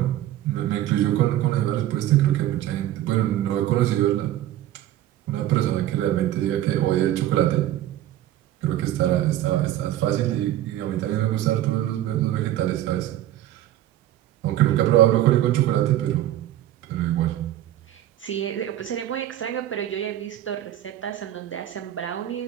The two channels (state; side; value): quieter; left; 13.2 dB